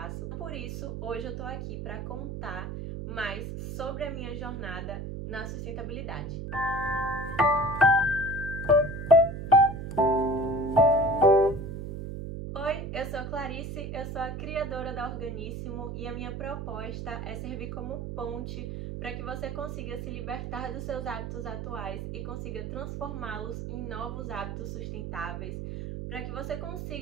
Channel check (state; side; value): noise; right; hum, 6 dB below the sound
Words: Por isso, hoje eu tô aqui para contar mais sobre a minha jornada na sustentabilidade. Oi, eu sou Clarice, eu sou a criadora da Organíssimo e a minha proposta é servir como ponte para que você consiga se libertar dos seus hábitos atuais e consiga transformá-los em novos hábitos sustentáveis, para que você